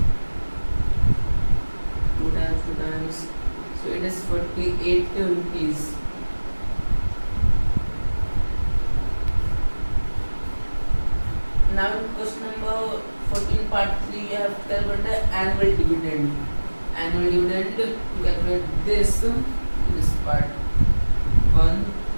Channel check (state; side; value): inverted; both; correlation -1.00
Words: 2 times, so it is 48 rupees. Now in question number 14 part 3 you have to calculate the annual dividend. Annual dividend, to calculate this part 1,